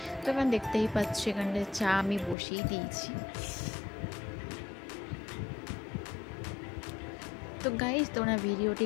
তো এখানে দেখতেই পাচ্ছ এখানটায় চা আমি বসিয়ে দিয়েছি। তো গাইজ, তোমরা ভিডিওটি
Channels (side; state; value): right; drops out; at 2.4 s